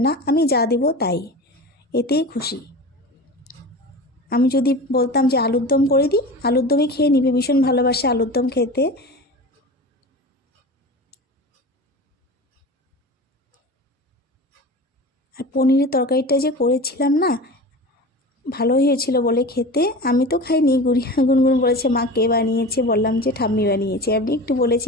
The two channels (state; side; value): normal; both; correlation 0.32